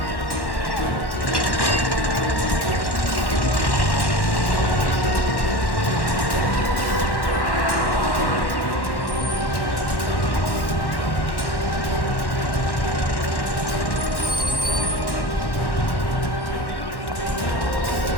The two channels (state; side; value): late; right; 1.1 ms